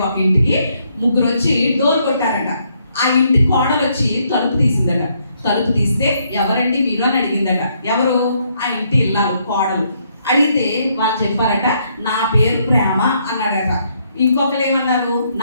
ఒక ఇంటికి ముగ్గురు వచ్చి డోర్ కొట్టారట. ఆ ఇంటి కోడలు వచ్చి తలుపు తీసిందట. తలుపు తీస్తే ఎవరండి మీరు అని అడిగిందట. ఎవరు? ఆ ఇంటి ఇల్లాలు కోడలు. అడిగితే వాళ్ళు చెప్పారట, నా పేరు ప్రేమ అన్నాడట. ఇంకొకరు ఏమన్నారు,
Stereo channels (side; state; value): both; inverted; correlation -0.73